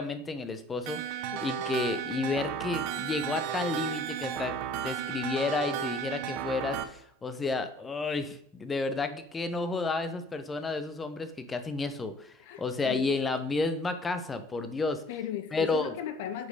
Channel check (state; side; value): normal; both; correlation 0.53